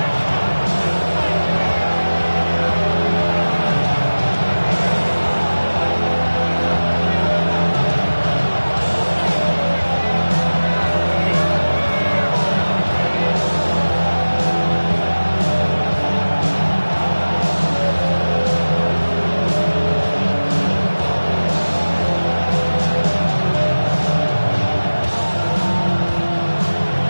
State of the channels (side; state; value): both; inverted; correlation -1.00